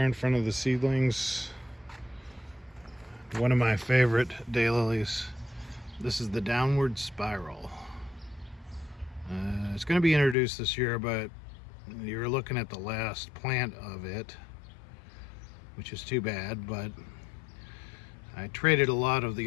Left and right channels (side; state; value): right; drops out; at 10.4 s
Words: front of the seedlings. One of my favorite daylilies. This is the Downward Spiral. It's going to be introduced this year, but you're looking at the last plant of it, which is too bad, but I traded a lot of